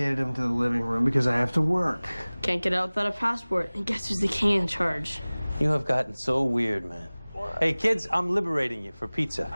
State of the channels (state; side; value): inverted; both; correlation -1.00